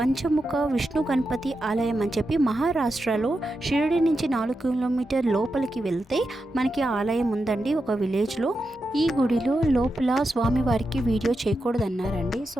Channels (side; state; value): both; normal; correlation 0.88